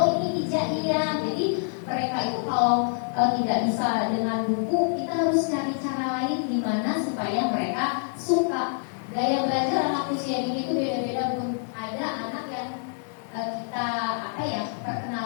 ini hijaiyah. Jadi mereka itu kalau tidak bisa dengan buku, kita harus cari cara lain gimana supaya mereka suka. Gaya belajar anak usia dini itu beda-beda Bu. Ada anak yang kita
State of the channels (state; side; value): silent; right; digital silence